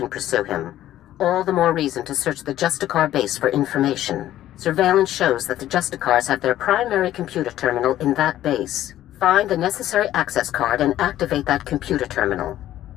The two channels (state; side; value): quieter; right; 13.1 dB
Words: pursue him. All the more reason to search the Justicar base for information. Surveillance shows that the Justicars have their primary computer terminal in that base. Find the necessary access card and activate that computer terminal.